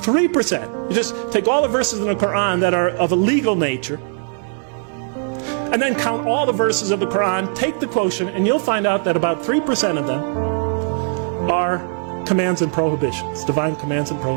you just take all the verses in the Quran that are of a legal nature, and then count all the verses of the Quran, take the quotient, and you'll find out that about 3% of them are commands and prohibitions, divine commands and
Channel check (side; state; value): left; silent; 57 dB below the other